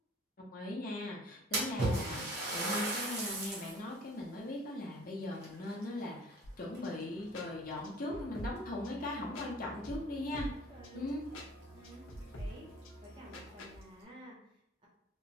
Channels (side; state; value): both; normal; correlation 0.50